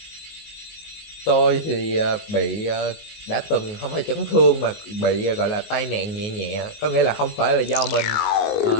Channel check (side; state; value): right; late; 19 ms